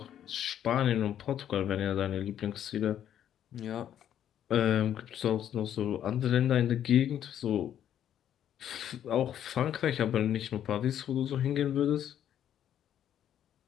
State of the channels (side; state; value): right; quieter; 10.3 dB